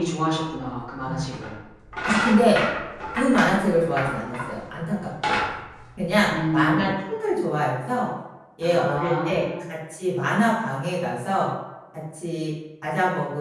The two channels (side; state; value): both; identical; correlation 1.00